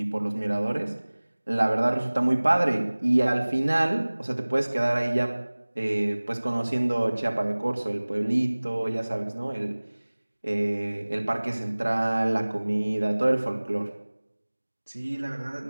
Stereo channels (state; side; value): inverted; both; correlation -1.00